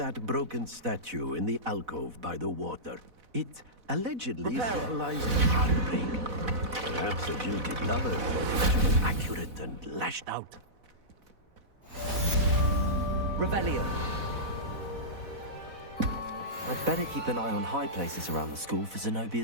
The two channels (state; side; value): late; left; 4.1 ms